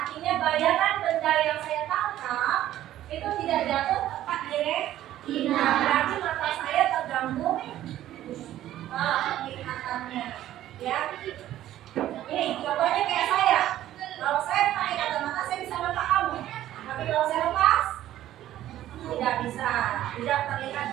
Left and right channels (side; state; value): left; quieter; 13.1 dB